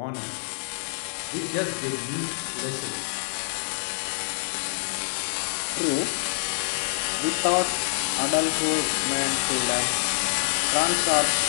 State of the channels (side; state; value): right; silent; 58 dB below the other